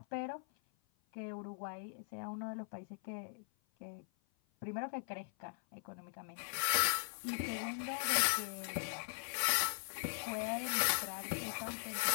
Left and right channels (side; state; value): right; silent; 51 dB below the other